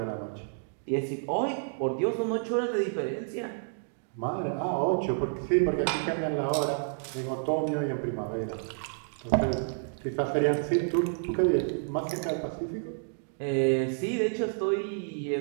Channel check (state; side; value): silent; left; digital silence